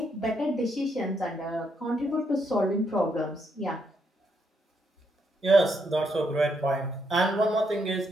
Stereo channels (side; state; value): both; normal; correlation 0.77